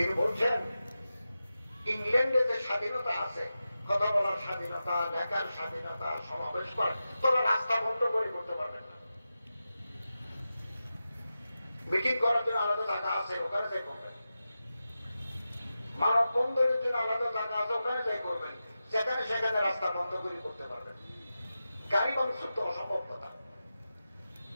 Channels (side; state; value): both; inverted; correlation -0.92